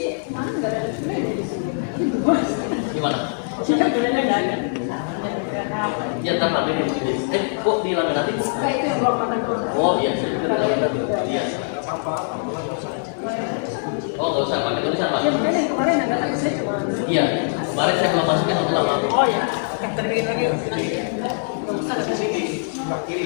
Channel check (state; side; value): silent; right; digital silence